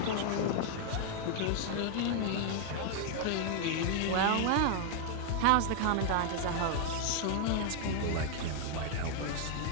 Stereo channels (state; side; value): different; both; correlation 0.00